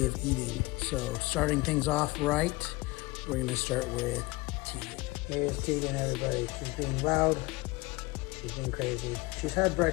of eating. So starting things off right, we're going to start with Tegan. Here's Tegan, everybody. She's being loud. She's being crazy. She's had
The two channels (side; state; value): right; quieter; 22.3 dB